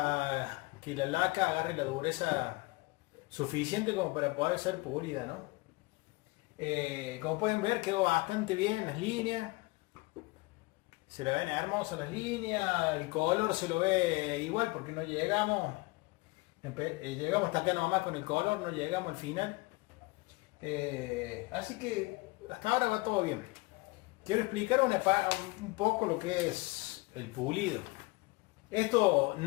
que la laca agarre la dureza suficiente como para poder ser pulida, ¿no? Como pueden ver, quedó bastante bien las líneas. Se le ven hermosas las líneas, el color se lo ve igual porque no llegamos, llegamos hasta acá nomás con el color, no llegamos al final. Así que hasta ahora va todo bien. Quiero explicar un poco lo que es el pulido. Esto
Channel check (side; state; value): right; quieter; 24.1 dB